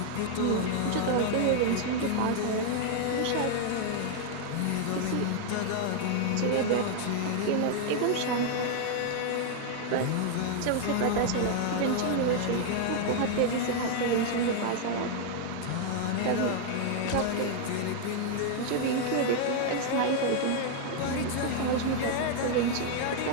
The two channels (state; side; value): different; both; correlation 0.00